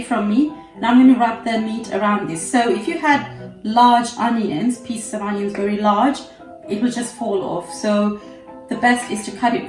from me, and I'm going to wrap the meat around this. So if you had large onions, pieces of onions very large, it will just fall off. So the best is to cut it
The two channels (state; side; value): identical; both; correlation 1.00